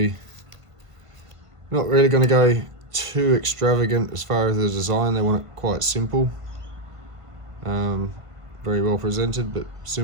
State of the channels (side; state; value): left; late; 1.5 ms